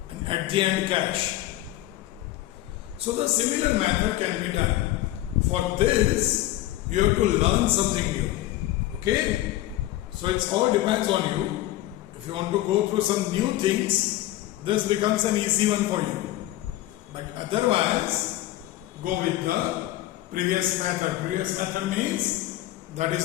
and at the end cash. So the similar method can be done. For this, you have to learn something new. Okay? So it all depends on you. If you want to go through some new things, this becomes an easy one for you. But otherwise, go with the previous method. Previous method means that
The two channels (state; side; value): quieter; right; 15.5 dB